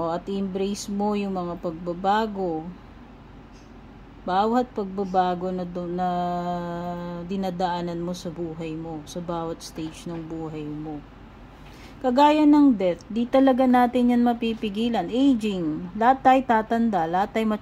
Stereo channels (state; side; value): identical; both; correlation 1.00